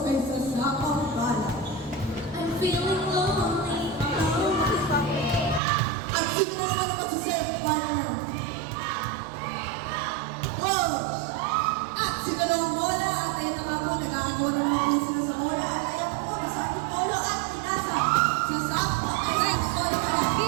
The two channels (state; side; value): drops out; left; at 5.6 s